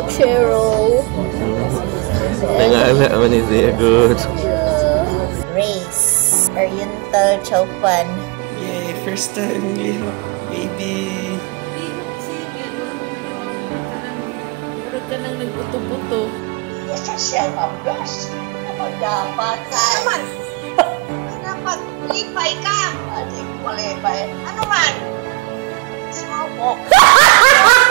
Nangala man siya good. Race. Oriental Chowpan. Yay, first time lihok, baby. Murag ka nang nagbuto-buto. Yes, siya ka. Yes. Ano dapat? Naman. Dapat lipay ka. Ate, malipay. Ano man? Sawok.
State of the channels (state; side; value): quieter; left; 27.6 dB